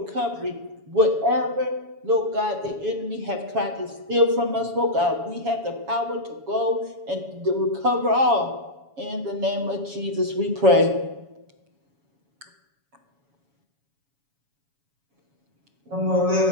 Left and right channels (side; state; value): left; late; 7.1 ms